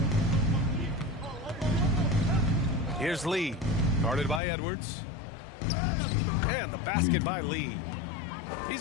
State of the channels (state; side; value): drops out; right; at 4.4 s